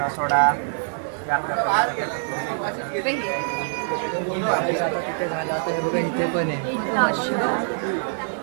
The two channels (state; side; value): silent; left; digital silence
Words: सोडा. आता तिथे झालं, आता हे बघा इथे पण आहे.